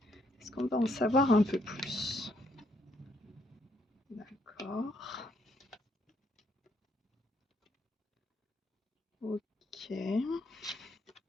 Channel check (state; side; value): normal; both; correlation 0.72